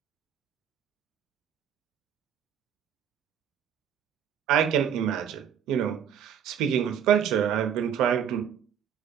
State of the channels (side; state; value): left; quieter; 8.5 dB